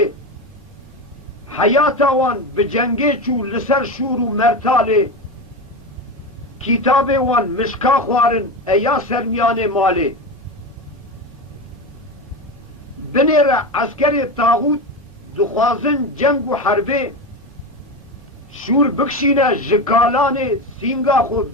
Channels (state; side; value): normal; both; correlation 0.20